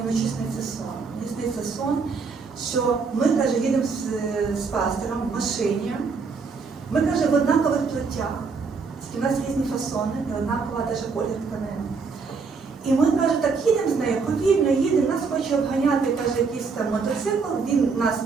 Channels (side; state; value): left; quieter; 4.9 dB